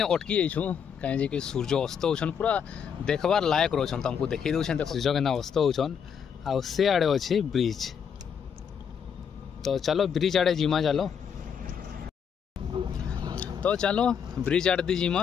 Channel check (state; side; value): quieter; right; 7.4 dB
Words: जाइछू कहीं कि सूर्य अस्त होछन पूरा देखबार लायक रोचन तुमको देखी दौन सूर्य के अस्त होछन आ से आड़े अच्छे ब्रिज तो चलो ब्रिज आड़े जिमा चलो। तो चलो ब्रिज आड़े दी जिमा